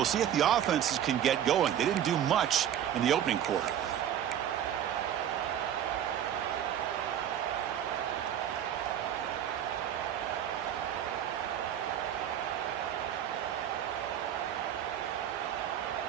see if the offenses can get going. They didn't do much in the opening quarter.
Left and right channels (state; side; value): quieter; left; 10.1 dB